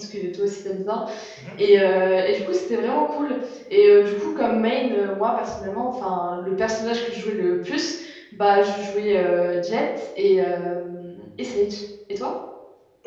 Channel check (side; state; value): both; identical; correlation 1.00